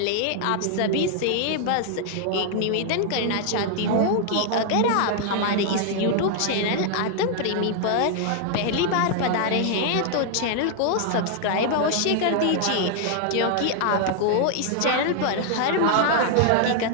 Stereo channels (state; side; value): different; both; correlation 0.00